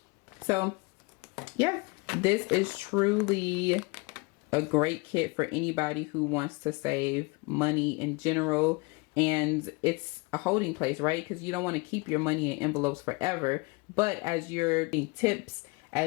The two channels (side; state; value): right; quieter; 27.9 dB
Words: So yeah, this is truly a great kit for anybody who wants to save money in general. And it's a holding place, right? Because you don't want to keep your money in envelopes forever. But as you're getting tips,